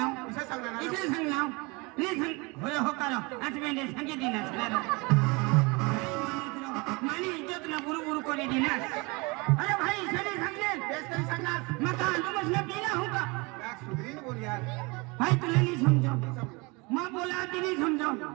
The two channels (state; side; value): quieter; left; 27.1 dB